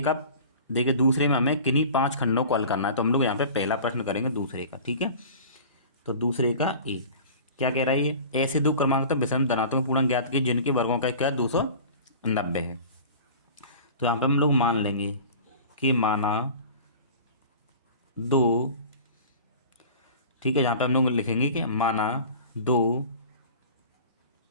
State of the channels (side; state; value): both; inverted; correlation -0.40